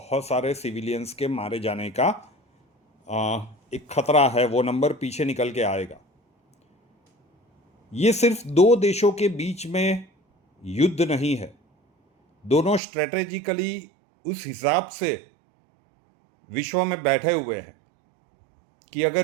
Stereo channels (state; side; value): drops out; left; at 12.8 s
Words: सारे सिविलियंस के मारे जाने का एक खतरा है। वो नंबर पीछे निकल के आएगा। ये सिर्फ दो देशों के बीच में युद्ध नहीं है। दोनों स्ट्रेटेजिकली उस हिसाब से विश्व में बैठे हुए हैं कि